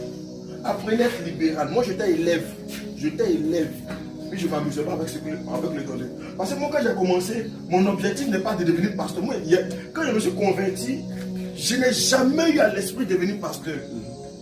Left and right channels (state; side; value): identical; both; correlation 1.00